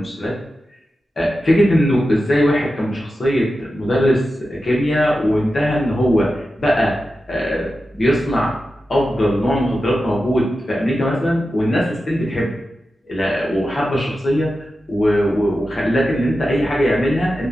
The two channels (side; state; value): both; normal; correlation 0.91